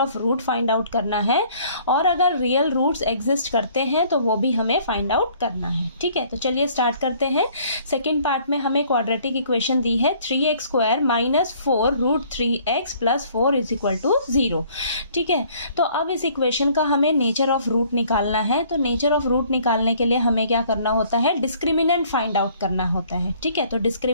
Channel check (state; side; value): inverted; both; correlation -0.58